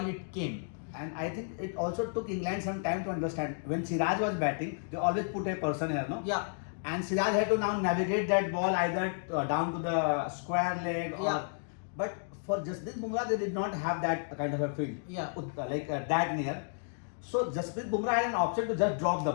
it came. And I think it also took England some time to understand. When Siraj was batting, they always put a person here, no? Yeah. And Siraj had to now navigate that ball either down to the square leg or. Yeah. But for Jasprit Bumrah, they did not have that kind of a field. Yeah. That near. So Jasprit Bumrah had an option to just drop the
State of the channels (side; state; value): right; silent; digital silence